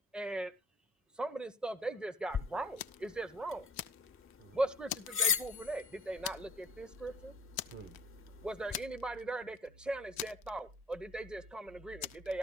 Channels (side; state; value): both; normal; correlation 0.51